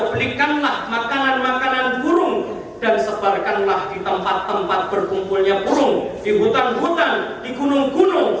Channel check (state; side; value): identical; both; correlation 1.00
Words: belikanlah makanan-makanan burung dan sebarkanlah di tempat-tempat berkumpulnya burung, di hutan-hutan, di